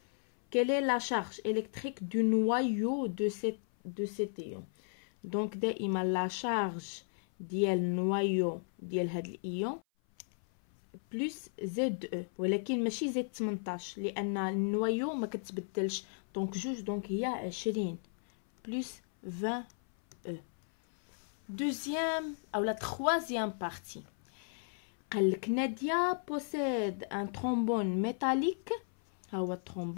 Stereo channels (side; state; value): right; silent; 55 dB below the other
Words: quelle est la charge électrique du noyau de cet ion? donc دائما لا شارج ديال النوايو ديال هاد الايون بلس زد او، ولكن ماشي زد 18 لان النوايو ما كتبدلش. دونك جوج، دونك هي 20 بلس 20 او. دوزيام او لا تخوازيام بارتي، قالك نادية بوسيد ان ترومبون ميتاليك. ها هو